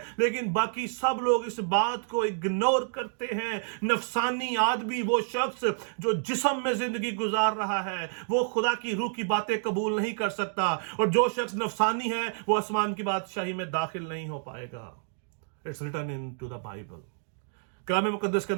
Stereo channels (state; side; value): silent; left; digital silence